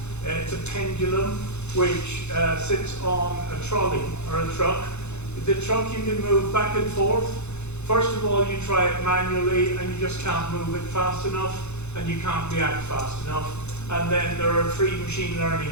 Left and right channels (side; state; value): right; late; 0.81 ms